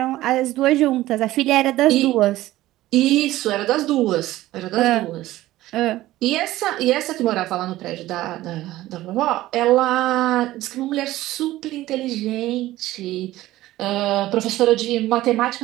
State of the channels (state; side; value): quieter; left; 16.0 dB